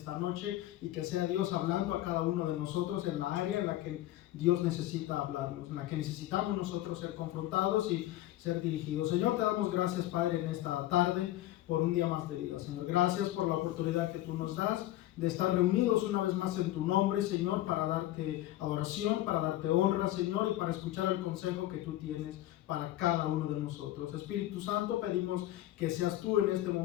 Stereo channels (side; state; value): right; quieter; 14.9 dB